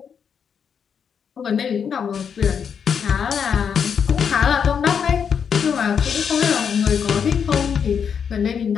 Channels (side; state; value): right; quieter; 7.1 dB